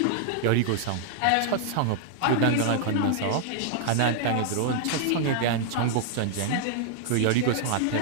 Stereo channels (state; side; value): different; both; correlation 0.00